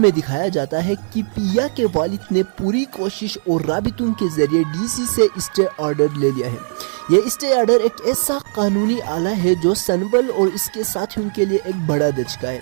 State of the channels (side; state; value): left; silent; digital silence